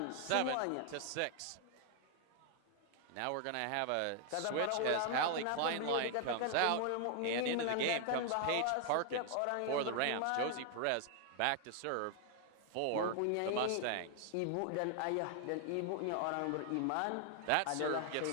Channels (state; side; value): different; both; correlation 0.00